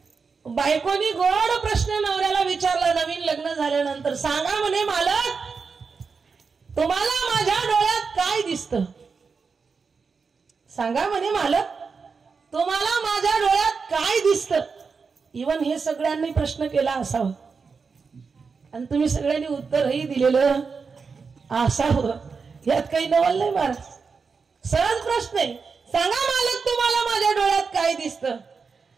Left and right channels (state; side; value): quieter; left; 5.1 dB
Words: बायकोनी गोड प्रश्न नवऱ्याला विचारला नवीन लग्न झाल्यानंतर, सांगा म्हणे मालक तुम्हाला माझ्या डोळ्यात काय दिसतं? सांगा म्हणे मालक तुम्हाला माझ्या डोळ्यात काय दिसतं? इवन हे सगळ्यांनी प्रश्न केला असावा आणि तुम्ही सगळ्यांनी उत्तरही दिलेलं असावं. यात काही नवल नाही महाराज. सहज प्रश्न आहे. सांगा मालक तुम्हाला माझ्या डोळ्यात काय दिसतं?